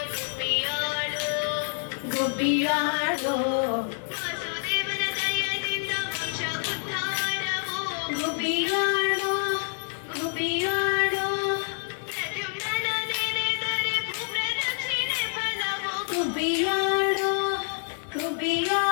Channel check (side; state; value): right; silent; 60 dB below the other